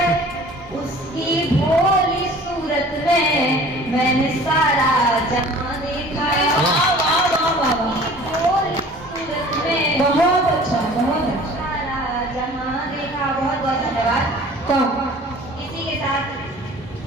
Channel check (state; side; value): normal; both; correlation 0.47